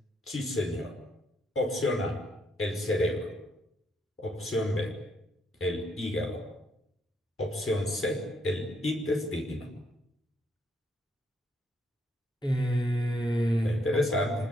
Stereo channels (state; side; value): normal; both; correlation 0.74